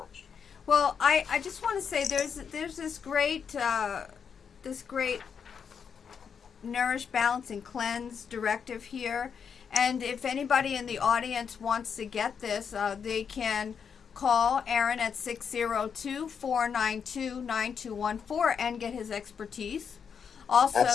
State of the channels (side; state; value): right; quieter; 6.8 dB